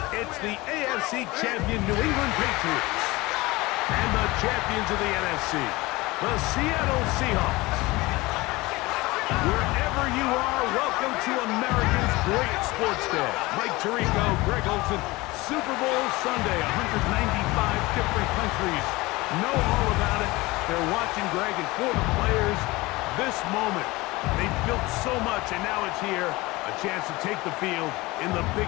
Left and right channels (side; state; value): right; quieter; 21.4 dB